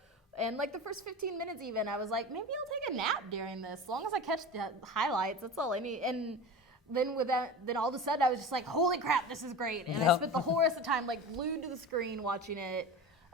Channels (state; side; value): normal; both; correlation 0.31